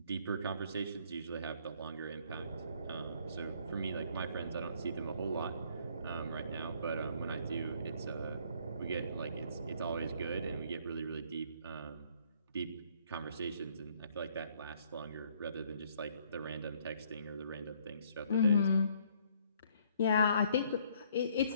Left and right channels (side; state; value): both; inverted; correlation -0.63